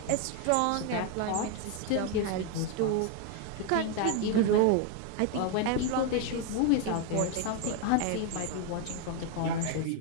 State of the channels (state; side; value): different; both; correlation 0.01